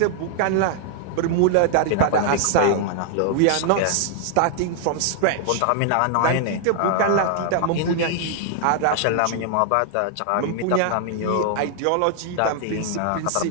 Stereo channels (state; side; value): different; both; correlation 0.00